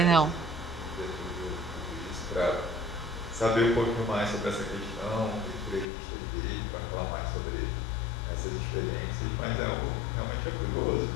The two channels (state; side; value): drops out; right; at 5.9 s